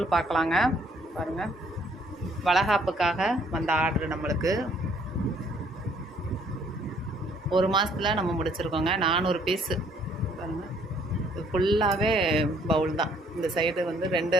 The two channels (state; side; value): normal; both; correlation 0.63